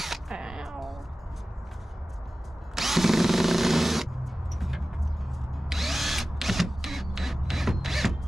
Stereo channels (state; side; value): normal; both; correlation 0.96